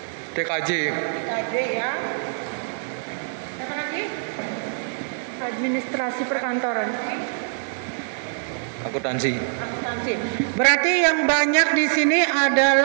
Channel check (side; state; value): left; silent; 63 dB below the other